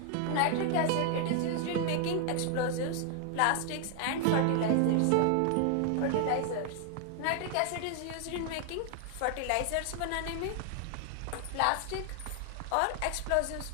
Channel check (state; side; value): different; both; correlation 0.00